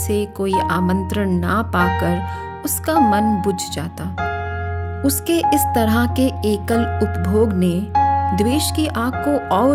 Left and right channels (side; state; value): both; identical; correlation 1.00